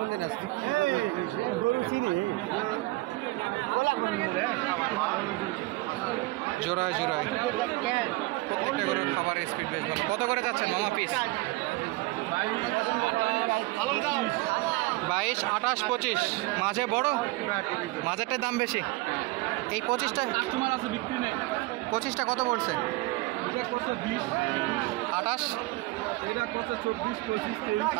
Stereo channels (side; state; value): left; quieter; 21.4 dB